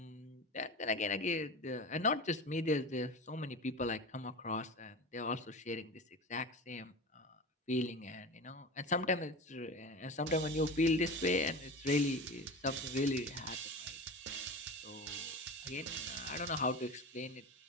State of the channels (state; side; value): normal; both; correlation 0.29